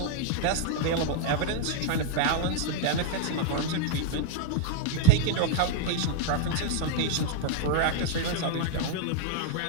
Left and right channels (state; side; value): different; both; correlation -0.01